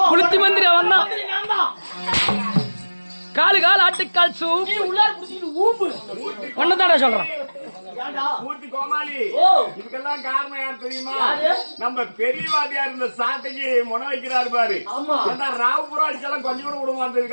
புளுத்தி மந்திரி அவன் தான். காலு கால் ஆட்டுக்கால் சூப் உள்ளார புடிச்சிட்டு ஊம்பு ஒன்னதாடா சொல்றேன். இதுக்கெல்லாம் காரணம் யார் தெரியுமா? நம்ம பெரியவாதியா இருந்த சாட்டைக்கு முனை வைக்கிறாரு பாரு. ராவுபுரம் அடிச்செல்லாம் கொஞ்சம் கூட விட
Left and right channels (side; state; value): both; inverted; correlation -1.00